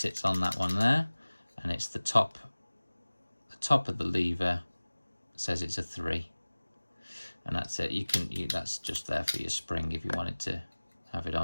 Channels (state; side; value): inverted; both; correlation -1.00